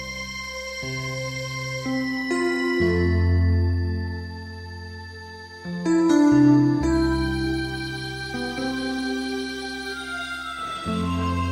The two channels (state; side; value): identical; both; correlation 1.00